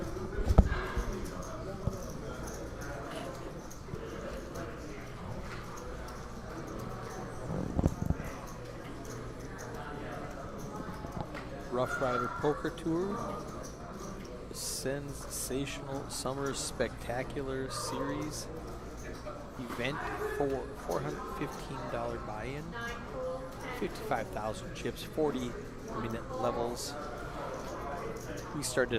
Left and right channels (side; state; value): both; identical; correlation 1.00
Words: Roughrider Poker Tour. Sensational Summer Spectacular Series event for $415 buy-in, 55,000 chips, 40-minute levels. We